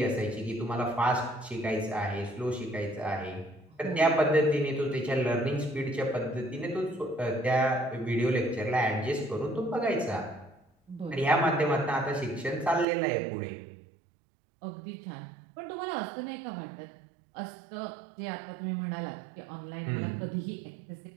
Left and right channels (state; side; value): drops out; left; at 12.9 s